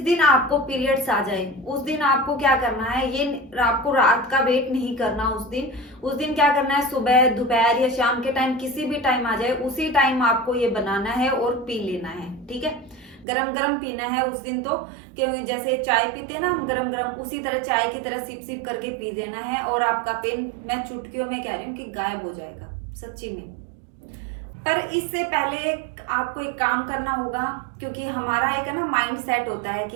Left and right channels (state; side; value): drops out; left; at 13.2 s